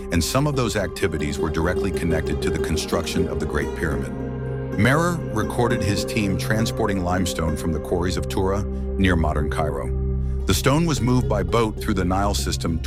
and some of those activities were directly connected to the construction of the Great Pyramid. Merer recorded his team transporting limestone from the quarries of Tura near modern Cairo. The stone was moved by boat through the Nile system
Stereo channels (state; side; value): identical; both; correlation 1.00